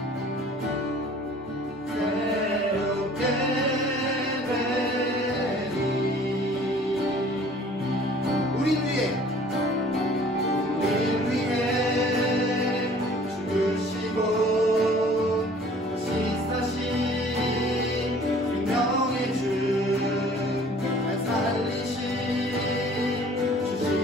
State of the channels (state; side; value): normal; both; correlation 0.51